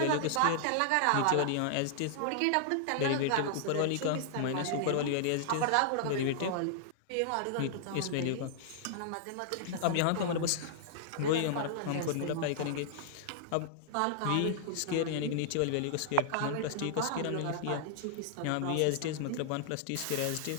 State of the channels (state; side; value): different; both; correlation -0.01